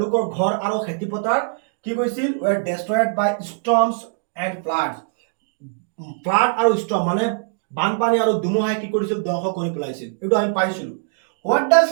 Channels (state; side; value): silent; left; digital silence